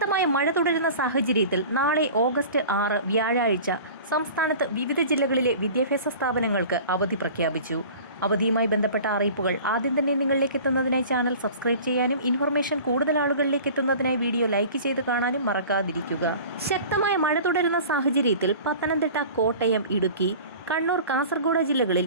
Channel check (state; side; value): inverted; both; correlation -0.41